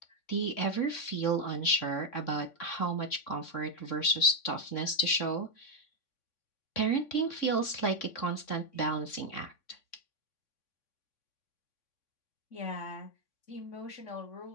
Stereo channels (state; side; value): late; right; 3.6 ms